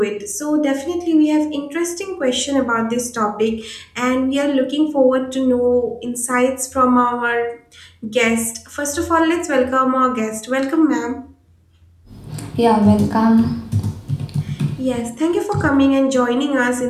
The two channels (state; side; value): identical; both; correlation 1.00